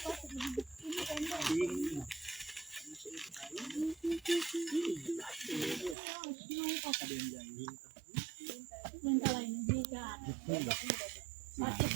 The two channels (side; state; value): left; drops out; at 6.0 s